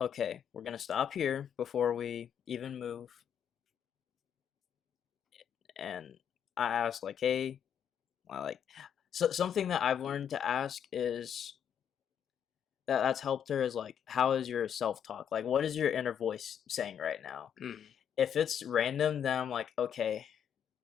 okay, we're gonna stop here before we even move. And I asked like, hey, I like so something that I've learned to ask is that's helped her is like, how is your self talk? Like, what is your inner voice saying right now? Mm. If it's random, then I'm like, okay,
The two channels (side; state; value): right; quieter; 8.6 dB